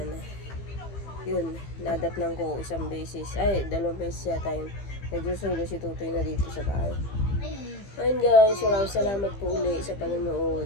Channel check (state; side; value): late; right; 15 ms